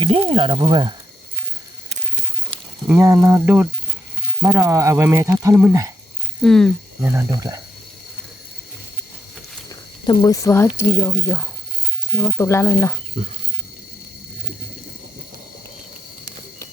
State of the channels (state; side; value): normal; both; correlation 0.70